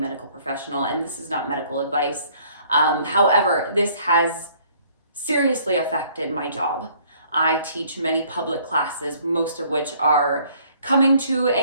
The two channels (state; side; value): inverted; both; correlation -0.59